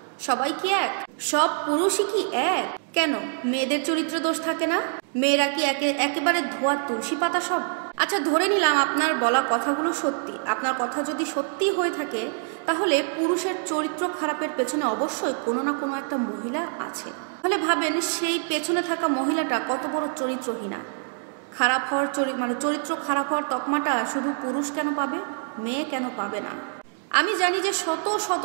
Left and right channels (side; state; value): left; silent; 61 dB below the other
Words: সবাই কি এক? সব পুরুষই কি এক? কেন মেয়েদের চরিত্র দোষ থাকে না? মেয়েরা কি একেবারে ধোয়া তুলসী পাতা সব? আচ্ছা, ধরে নিলাম আপনার বলা কথাগুলো সত্যি। আপনার কথা যদি সত্যি হয়ে থাকে, তাহলে পুরুষের চরিত্র খারাপের পেছনে অবশ্যই কোনো না কোনো একটা মহিলা আছে। তাহলে ভাবেন সেই পেছনে থাকা মহিলাটা কত বড় চরিত্রহীনা। খারাপ হওয়ার চরিত্র খারাপ হওয়ার তকমাটা শুধু পুরুষ কেন পাবে, মেয়ে কেন পাবে না? আমি জানি যে শত শত